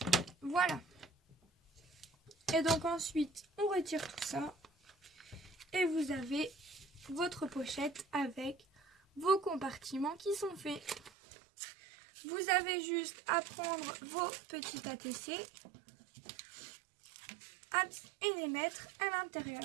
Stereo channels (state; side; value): drops out; left; at 11.1 s